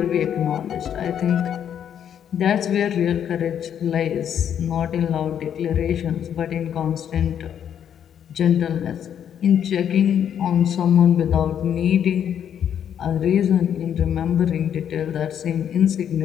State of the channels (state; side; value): quieter; right; 9.1 dB